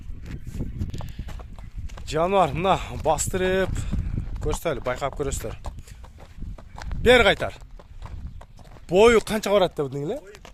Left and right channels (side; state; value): both; identical; correlation 1.00